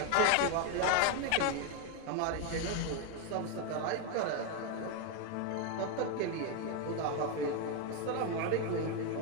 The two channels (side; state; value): both; different; correlation 0.01